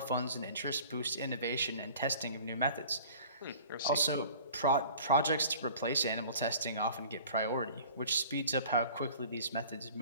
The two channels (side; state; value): both; inverted; correlation -0.46